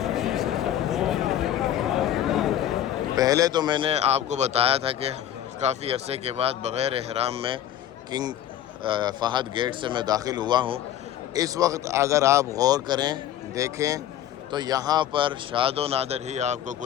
پہلے تو میں نے آپ کو بتایا تھا کہ کافی عرصے کے بعد بغیر احرام میں کنگ فہد گیٹ سے میں داخل ہوا ہوں. اس وقت اگر آپ غور کریں دیکھیں تو یہاں پر شاد و نادر ہی آپ کو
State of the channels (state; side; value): quieter; right; 11.3 dB